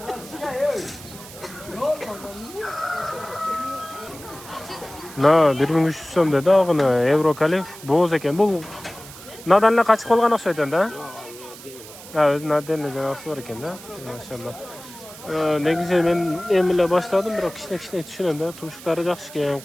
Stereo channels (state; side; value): noise; right; hiss, 17 dB below the sound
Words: Na 1300 so'm dedi og'ini Euro kalif bo'z ekan. Bu nadanla qachiq qolgan o'xshaydi-da. Ha, o'zi nadanla janasi bor ekan-da. Maşallah. Negize men emile başladım, biroq kichkina tushunaman-da. Tumshuqlari yaxshi ekan,